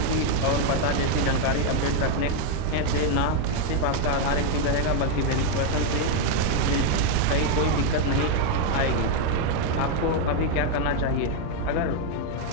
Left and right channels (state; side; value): different; both; correlation 0.01